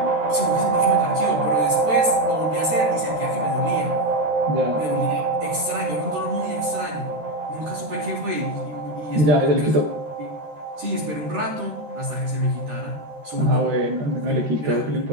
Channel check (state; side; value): late; left; 13 ms